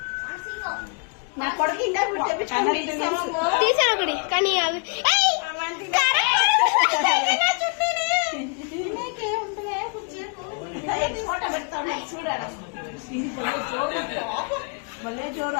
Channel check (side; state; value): right; quieter; 37.2 dB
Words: ఇంకా తెప్పించుకొని కానీ ఫోటో పెడతాను చూడాలి. భలే జోరు